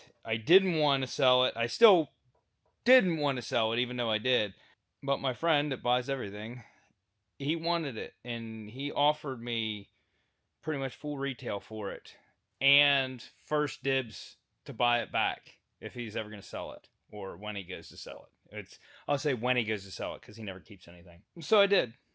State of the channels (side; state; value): both; identical; correlation 1.00